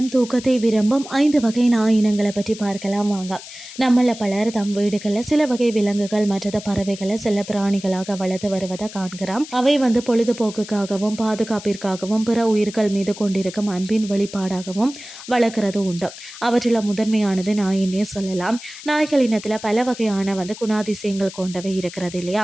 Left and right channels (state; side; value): noise; left; hiss, 15 dB below the sound